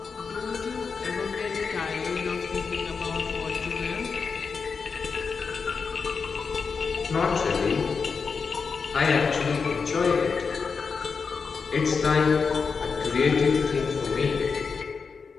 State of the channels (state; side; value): quieter; right; 5.3 dB